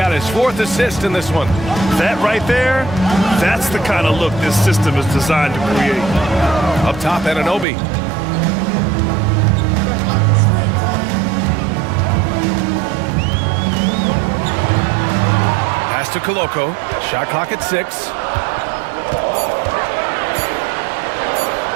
his 4th assist in this one. That right there, that's the kind of look this system is designed to create. Up top, Anunoby. Pass to Koloko. Shot clock at 6.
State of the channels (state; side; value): drops out; left; at 7.7 s